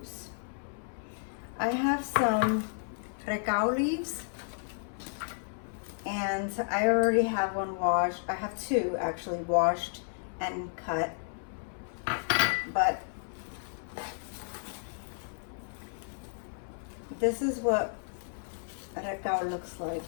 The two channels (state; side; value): silent; right; 56 dB below the other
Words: I have some recao leaves, and I already have one washed. I have two actually washed and cut, but this is what recao looks like.